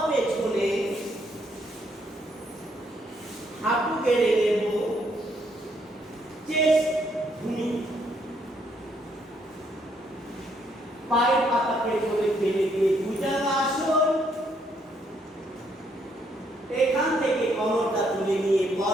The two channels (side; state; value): both; normal; correlation 0.71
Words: পেছনে, হাঁটু গেড়ে নেব, চেস্ট ভূমি, পায়ের পাতা পেছনে ফেলে দিয়ে ভুজঙ্গাসন। এখান থেকে কোমরটা তুলে নিয়ে